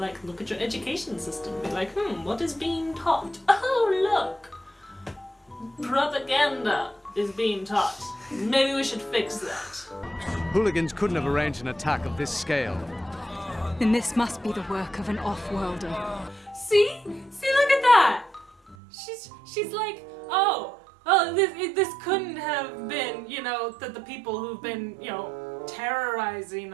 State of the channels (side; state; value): left; drops out; at 18.8 s